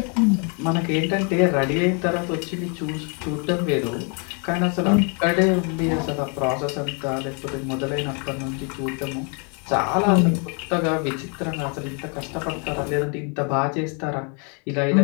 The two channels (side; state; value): right; quieter; 36.6 dB